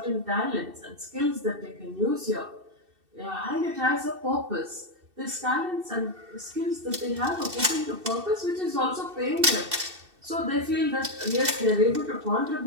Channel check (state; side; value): late; left; 2.6 ms